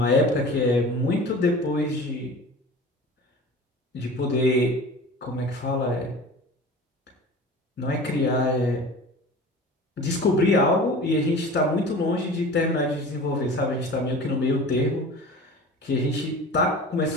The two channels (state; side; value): normal; both; correlation 0.38